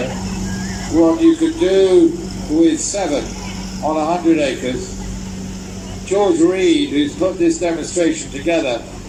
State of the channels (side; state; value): both; identical; correlation 1.00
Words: what you could do with 7 on 100 acres, George Reed, who's put this demonstration together